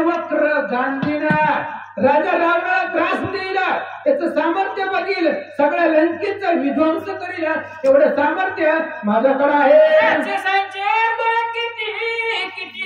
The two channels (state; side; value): identical; both; correlation 1.00